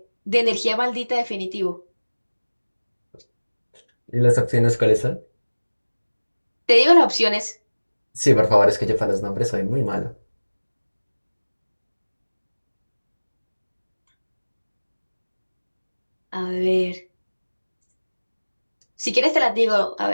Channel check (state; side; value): inverted; both; correlation -1.00